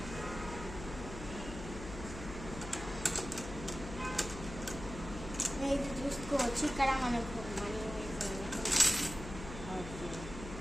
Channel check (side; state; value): left; noise; hum, 10 dB below the sound